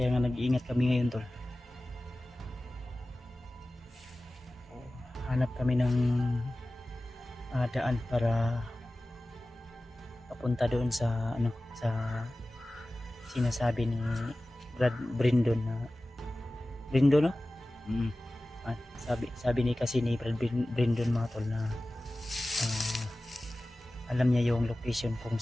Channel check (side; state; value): both; normal; correlation 0.97